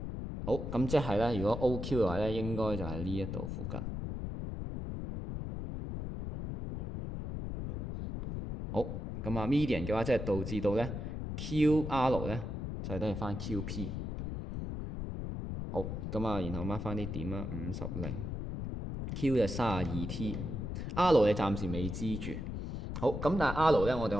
好，咁即係咧，如果 OQ 嘅話咧，應該就係呢一度附近。好，咁啊 median 嘅話，即係導致到咧 QR 咧就係等於翻 QP。好，咁啊，然後 mark 翻啲點啦，50，Q 就32T，R 你暫時未知住。好，咁但係 R 咧，我哋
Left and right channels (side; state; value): left; noise; rumble, 5 dB below the sound